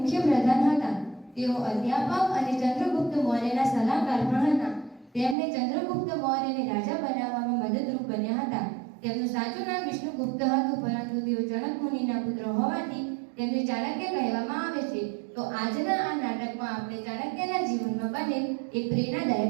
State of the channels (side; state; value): left; drops out; at 5.4 s